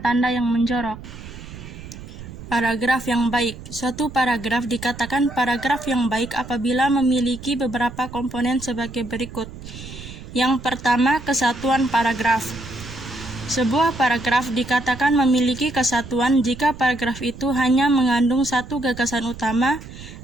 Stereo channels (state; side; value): noise; right; rumble, 14 dB below the sound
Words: tanda yang menjorok. Paragraf yang baik. Suatu paragraf dikatakan paragraf yang baik apabila memiliki beberapa komponen sebagai berikut. Yang pertama, kesatuan paragraf. Sebuah paragraf dikatakan memiliki kesatuan jika paragraf itu hanya mengandung satu gagasan utama